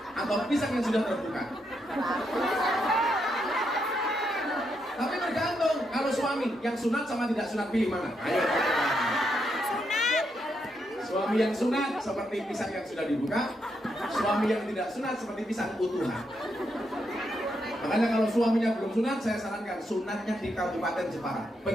atau pisang yang sudah terbuka? Tapi tergantung. Kalau suami yang sunat sama tidak sunat, pilih mana? Ayo. Suami yang sunat seperti pisang yang sudah dibuka, suami yang tidak sunat seperti pisang utuhan. Makanya kalau suaminya belum sunat, saya sarankan sunatnya di Kabupaten Jepara.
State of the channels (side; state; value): both; normal; correlation 0.80